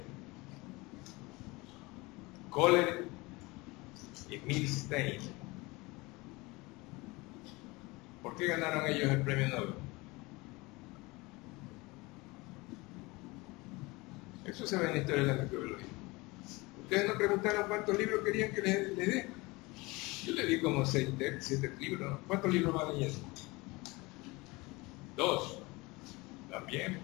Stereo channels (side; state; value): right; quieter; 23.6 dB